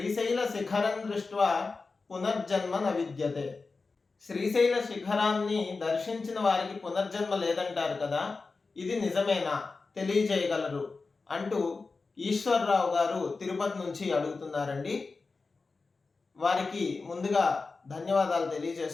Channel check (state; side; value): quieter; right; 4.1 dB